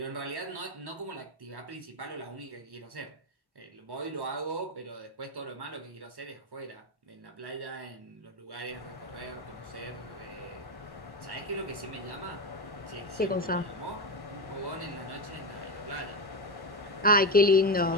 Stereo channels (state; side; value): normal; both; correlation 0.14